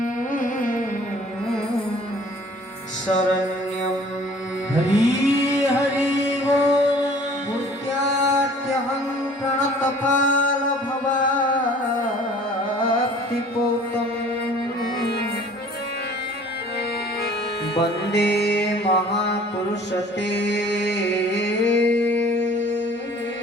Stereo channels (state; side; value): normal; both; correlation 0.51